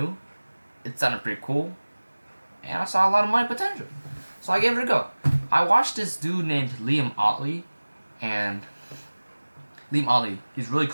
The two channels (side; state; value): both; inverted; correlation -1.00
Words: it sounded pretty cool, and I saw a lot of money potential. So I gave it a go. I watched this dude named Liam Otley, and Liam Otley, he's a really